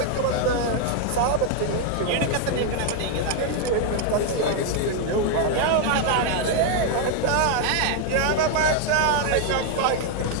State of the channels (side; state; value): both; different; correlation 0.00